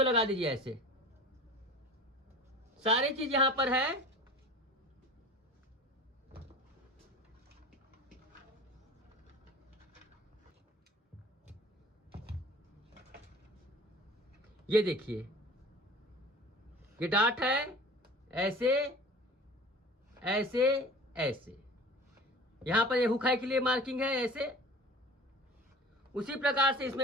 लगा दीजिए ऐसे, सारी चीज यहां पर है। ये देखिए, ये डाट है ऐसे ऐसे ऐसे, यहां पर ये हुक के लिए मार्किंग है ऐसे। उसी प्रकार से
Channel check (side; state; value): both; normal; correlation 0.41